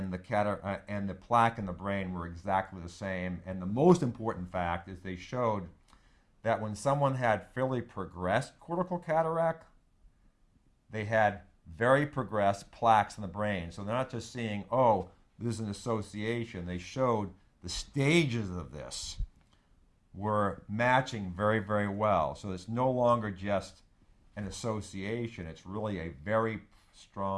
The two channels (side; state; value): both; identical; correlation 1.00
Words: the plaque in the brain were exactly the same. And the most important fact is they showed that when someone had fairly progressed cortical cataract, they had very progressed plaques in the brain. So they're not just seeing, oh, there's an association. They showed the stages of this were matching very, very well. So it's no longer just an association. It's really a very